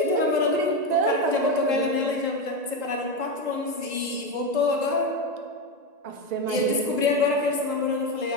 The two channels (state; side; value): late; left; 1.9 ms